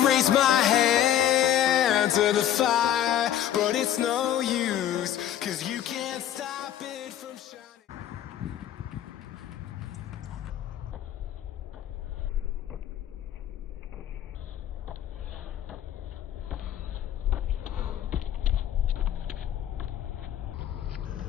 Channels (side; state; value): right; quieter; 11.0 dB